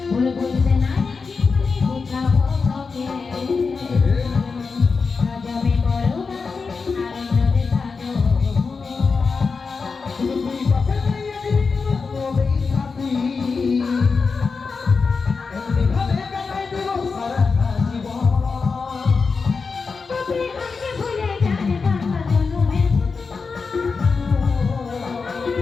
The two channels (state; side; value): quieter; right; 4.8 dB